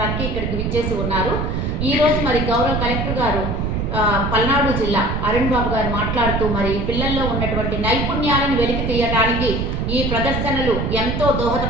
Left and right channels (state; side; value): noise; right; rumble, 1 dB below the sound